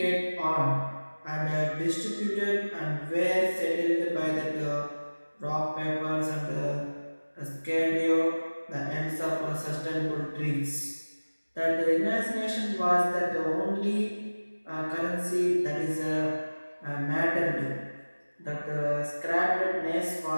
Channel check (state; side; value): inverted; both; correlation -1.00